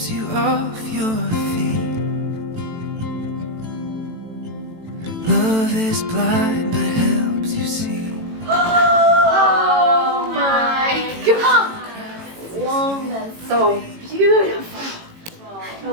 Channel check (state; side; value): late; left; 18 ms